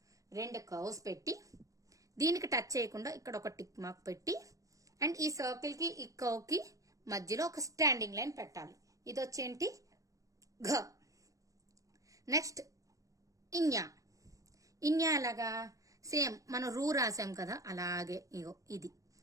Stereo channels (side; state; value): left; late; 0.16 ms